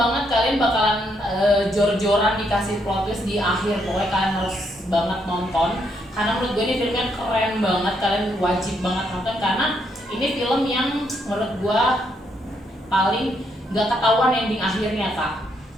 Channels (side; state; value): both; normal; correlation 0.75